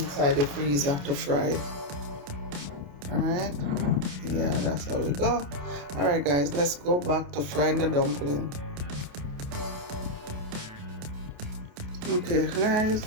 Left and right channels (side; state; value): left; late; 28 ms